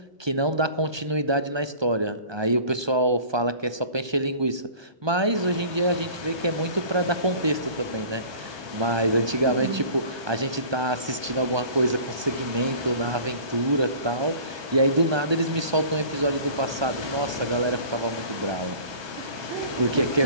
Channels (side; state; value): left; late; 1.2 ms